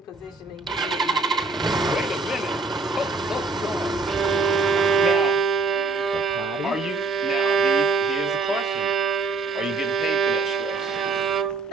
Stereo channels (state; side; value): quieter; left; 4.0 dB